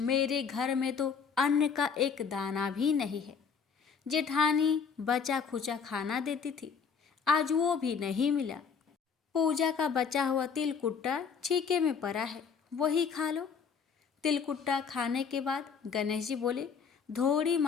घर में तो अन्न का एक दाना भी नहीं है। जेठानी बचा खुचा खाना देती थी, आज वो भी नहीं मिला। पूजा का बचा हुआ तिलकुट्टा छीके में पड़ा है, वही खा लो। तिलकुट्टा खाने के बाद गणेश जी बोले, धोड़ी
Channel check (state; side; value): quieter; right; 6.2 dB